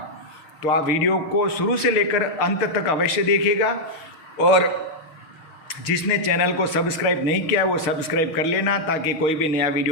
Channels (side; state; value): right; late; 6.7 ms